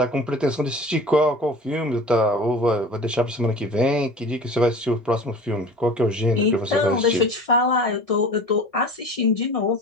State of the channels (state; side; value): normal; both; correlation 0.39